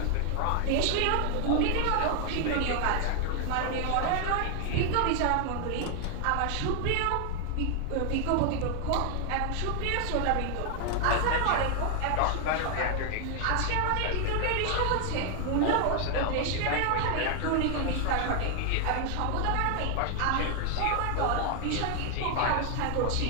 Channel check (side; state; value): both; different; correlation 0.00